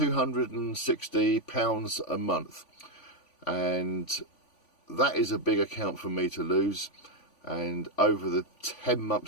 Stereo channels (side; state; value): right; late; 3.5 ms